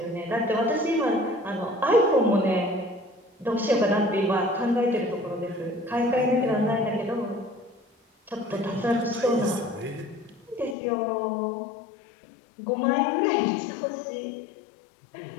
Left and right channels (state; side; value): drops out; right; at 10.8 s